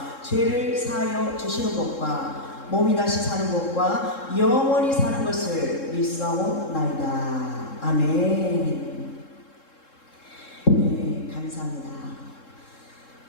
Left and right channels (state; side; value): late; right; 3.7 ms